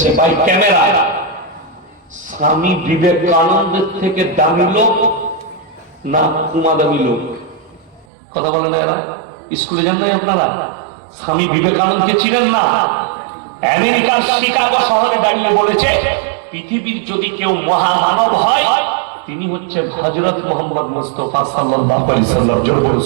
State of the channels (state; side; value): drops out; left; at 8.1 s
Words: ভাই ক্যামেরা, স্বামী বিবেকানন্দের থেকে দামি লোক না কুমা দামি লোক? কথা বলে না এরা? স্কুলে যান নাই আপনারা? স্বামী বিবেকানন্দকে চিনেন না? আমেরিকার শিকাগো শহরে দাঁড়িয়ে বলেছে, পৃথিবীর যদি কেউ মহামানব হয় তিনি হচ্ছেন হযরত মুহাম্মদ মুস্তাফা সাল্লাল্লাহু আলাইহি সাল্লাম। জোরে বলে